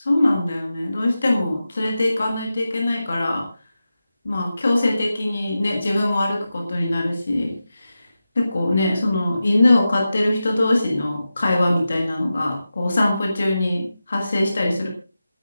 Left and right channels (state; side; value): inverted; both; correlation -0.92